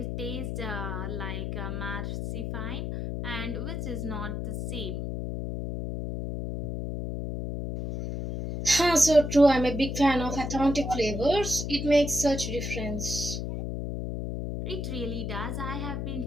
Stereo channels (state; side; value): noise; left; hum, 4 dB below the sound